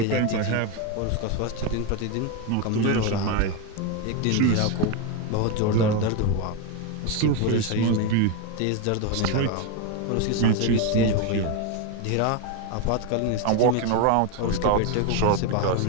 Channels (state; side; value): different; both; correlation 0.02